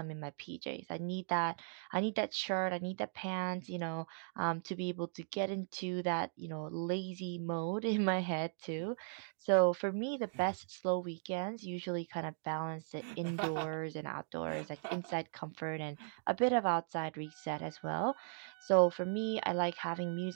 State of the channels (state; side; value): silent; left; digital silence